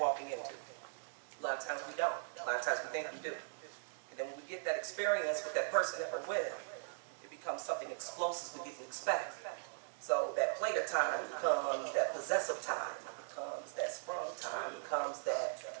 into. A lot of times we don't. A lot of times we think we do. And then when we get that experience with that person that we're with, it becomes something explosive we didn't expect. So that player time becomes that possessive time, becomes that sprung time, becomes that,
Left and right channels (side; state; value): left; silent; digital silence